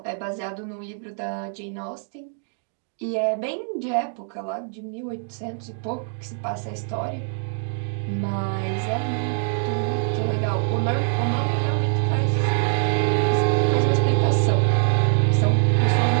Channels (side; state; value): left; silent; 58 dB below the other